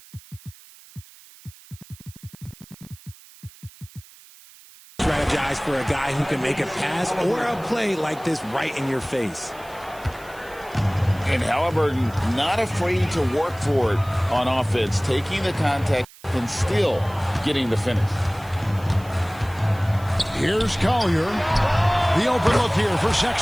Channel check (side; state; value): right; noise; hiss, 23 dB below the sound